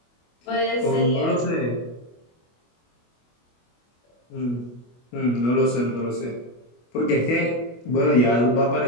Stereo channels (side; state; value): right; late; 25 ms